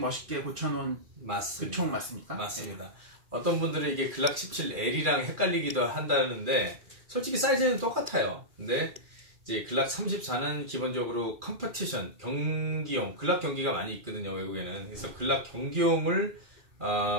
고쳐놓은 맞습니다. 그 총 맞습니까? 맞습니다. 어떤 분들은 이게 글락 17L이랑 헷갈리기도 한다는데 솔직히 사이즈는 똑같아요. 근데 이제 글락 34는 기본적으로 컴퍼티션 경기용, 글락 경기가 많이 있거든요, 외국에는. 그래서 글락 경기용을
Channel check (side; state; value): left; late; 2.4 ms